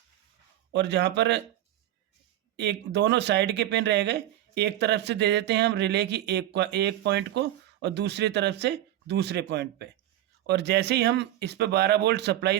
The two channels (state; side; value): quieter; left; 13.2 dB